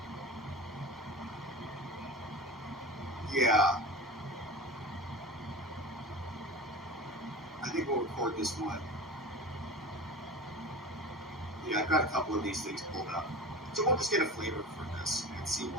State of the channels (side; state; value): both; normal; correlation 0.32